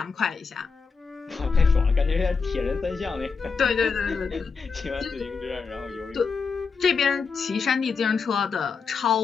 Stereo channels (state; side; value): quieter; right; 5.1 dB